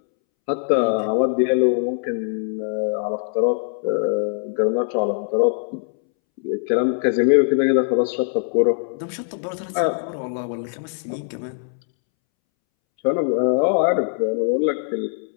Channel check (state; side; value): silent; right; 64 dB below the other